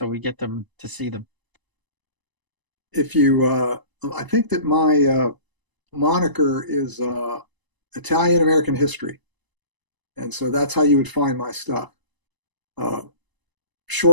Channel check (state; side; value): late; left; 1.0 ms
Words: we get them to see them? If you, I think that my moniker is Italian American History. And so that's how you would find my stuff.